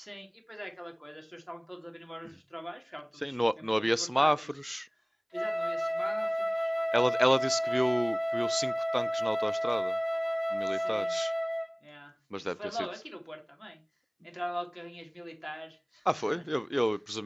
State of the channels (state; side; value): identical; both; correlation 1.00